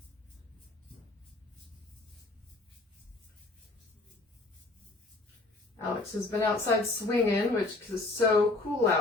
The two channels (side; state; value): right; quieter; 3.1 dB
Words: Alex has been outside swinging, which is so cool